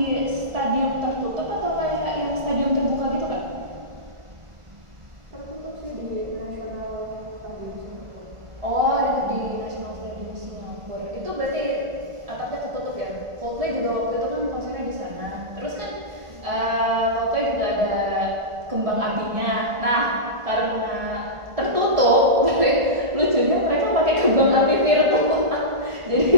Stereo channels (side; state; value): left; late; 1.5 ms